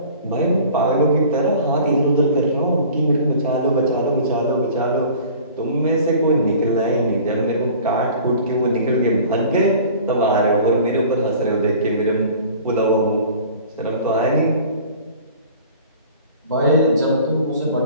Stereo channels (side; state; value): both; inverted; correlation -0.45